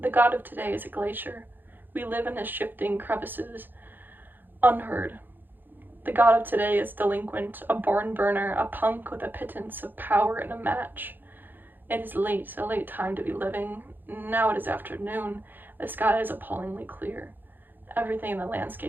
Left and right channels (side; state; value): left; late; 0.092 ms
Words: The God of today is a glacier. We live in his shifting crevices, unheard. The God of today is delinquent, a barn burner, a punk with a pittance of power and a match. It is late, a late time to be living. Now it is afternoon. The sky is appallingly clear. Everything in the